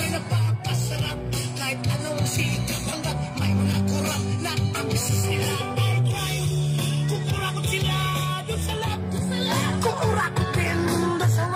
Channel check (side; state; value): both; identical; correlation 1.00